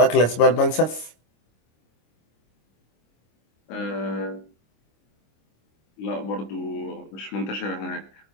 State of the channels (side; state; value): right; late; 26 ms